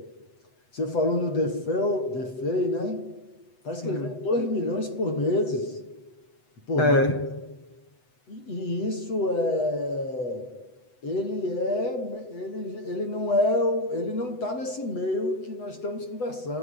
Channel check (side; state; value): right; late; 8.0 ms